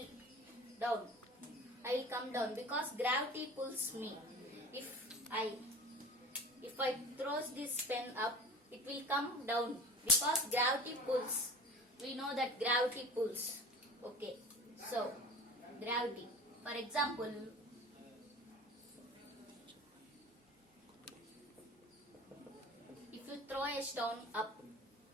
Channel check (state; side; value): normal; both; correlation 0.38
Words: will come down because gravity pulls me. If I throw this pen up, it will come down because gravity pulls. We know that gravity pulls. Okay, so gravity. For example, if you throw a stone up,